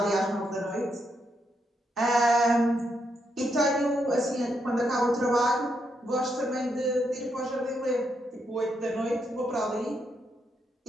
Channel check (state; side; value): normal; both; correlation 0.79